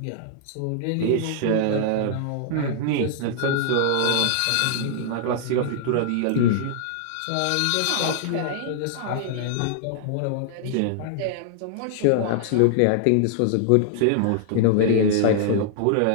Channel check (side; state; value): both; different; correlation -0.01